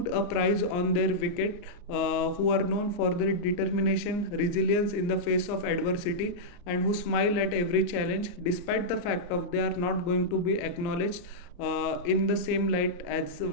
a price on their wicket, who are known for their determination, resilience in the face of adversity, and who smile at every challenge, despite the fact of they are not going to be acknowledged in the same light as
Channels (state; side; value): late; right; 34 ms